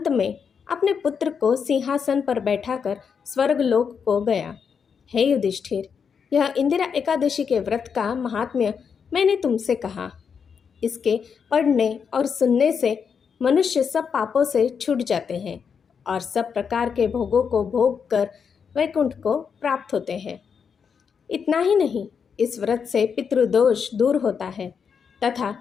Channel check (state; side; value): quieter; right; 6.5 dB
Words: में अपने पुत्र को सिंहासन पर बैठाकर स्वर्गलोक को गया। हे युधिष्ठिर, यह इंदिरा एकादशी के व्रत का महात्म्य मैंने तुमसे कहा। इसके पढ़ने और सुनने से मनुष्य सब पापों से छूट जाते हैं और सब प्रकार के भोगों को भोग कर वैकुंठ को प्राप्त होते हैं। इतना ही नहीं, इस व्रत से पितृदोष दूर होता है तथा